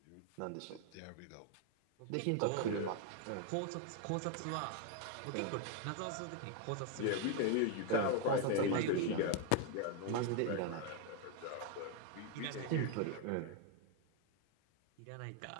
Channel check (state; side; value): different; both; correlation 0.01